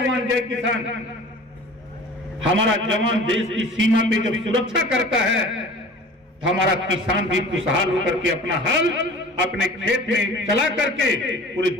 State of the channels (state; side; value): normal; both; correlation 0.42